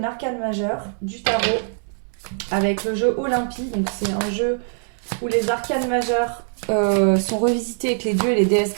arcane majeure du tarot avec le jeu Olympie, donc c'est un jeu où les arcanes majeures sont revisités avec les dieux et les déesses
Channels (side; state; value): left; silent; digital silence